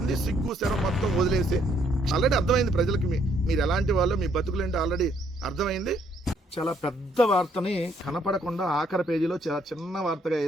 సిగ్గు శరం మొత్తం వదిలేసి ఆల్రెడీ అర్థమైంది ప్రజలకి మీరు ఎలాంటి వాళ్ళు, మీ బతుకులేంటి ఆల్రెడీ అర్థమైంది. చాలా పెద్ద వార్తని కనపడకుండా ఆఖరి పేజీలో చాలా చిన్న వార్తగా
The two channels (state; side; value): normal; both; correlation 0.68